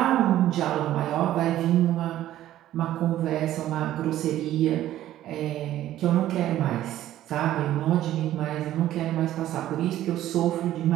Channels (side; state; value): left; quieter; 13.3 dB